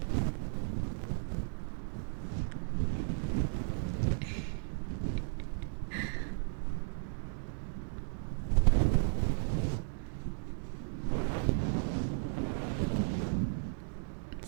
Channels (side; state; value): left; silent; 54 dB below the other